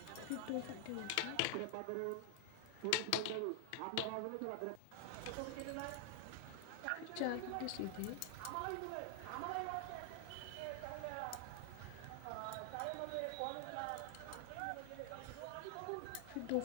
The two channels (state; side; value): different; both; correlation 0.00